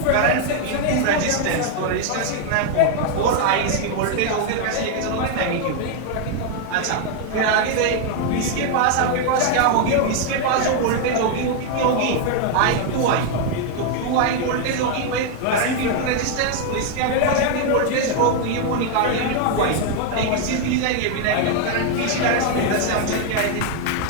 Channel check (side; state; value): both; different; correlation 0.01